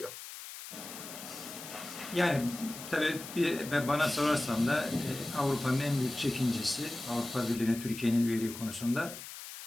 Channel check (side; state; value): left; noise; hiss, 11 dB below the sound